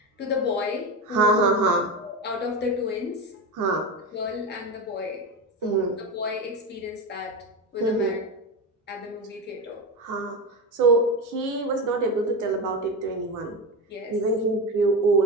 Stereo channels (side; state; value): both; normal; correlation 0.18